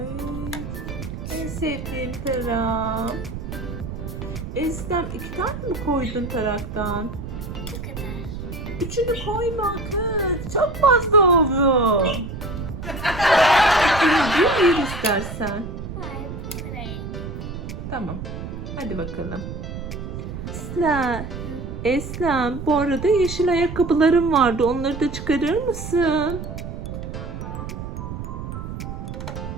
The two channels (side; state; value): right; noise; rumble, 7 dB below the sound